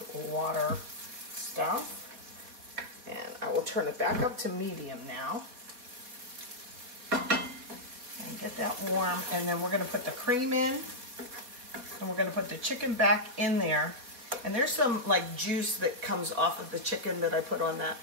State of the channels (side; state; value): left; late; 4.2 ms